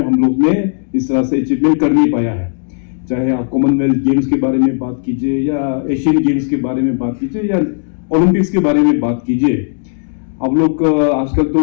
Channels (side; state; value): right; silent; digital silence